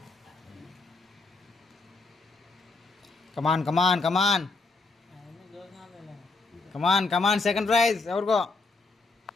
కమాన్ కమాన్ కమాన్ కమాన్ కమాన్ second prize ఎవరికో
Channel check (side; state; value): right; quieter; 3.7 dB